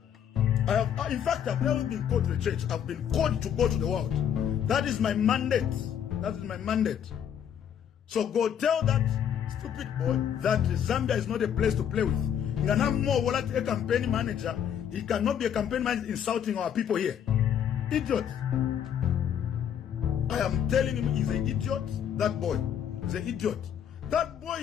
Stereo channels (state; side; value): quieter; right; 9.0 dB